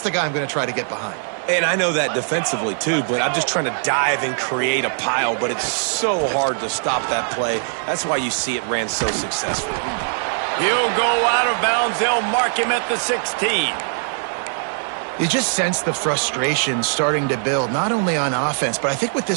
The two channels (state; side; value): silent; left; 65 dB below the other